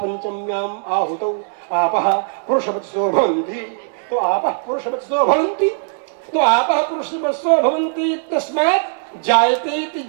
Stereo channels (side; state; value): left; silent; digital silence